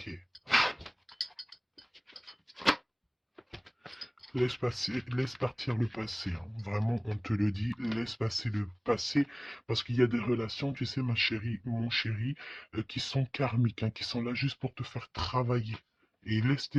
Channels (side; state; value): both; identical; correlation 1.00